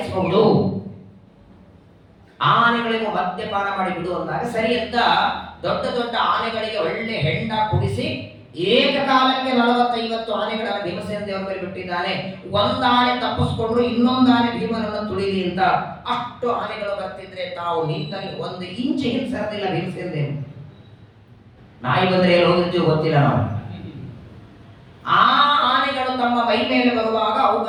ಆನೆಗಳಿಗೂ ಮದ್ಯಪಾನ ಮಾಡಿ ಬಿಡು ಅಂದಾಗ ಸರಿ ಅಂತ ದೊಡ್ಡ ದೊಡ್ಡ ಆನೆಗಳಿಗೆ ಒಳ್ಳೆ ಹೆಂಡ ಕುಡಿಸಿ ಏಕಕಾಲಕ್ಕೆ 40-50 ಆನೆಗಳನ್ನು ಭೀಮಸೇನ ದೇವರ ಮೇಲೆ ಬಿಟ್ಟಿದ್ದಾನೆ. ಒಂದು ಆನೆ ತಪ್ಪಿಸ್ಕೊಂಡ್ರು, ಇನ್ನೊಂದು ಆನೆ ಭೀಮನನ್ನು ತುಳಿಲಿ ಅಂತ. ಅಷ್ಟು ಆನೆಗಳು ಬರ್ತಿದ್ರೆ ತಾವು ನಿಂತಲ್ಲಿ 1 ಇಂಚ್ ಹಿಂಸರದಿಲ್ಲ ಭೀಮಸೇನ ದೇವರು. ನಾಯಿ ಬಂದ್ರೆ ಎಲ್ಲಿ ಹೋಗಿರ್ತೀವಿ ಗೊತ್ತಿಲ್ಲ ನಾವು. ಆ ಆನೆಗಳು ತಮ್ಮ ಮೈ ಮೇಲೆ ಬರುವಾಗ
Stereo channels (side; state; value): both; identical; correlation 1.00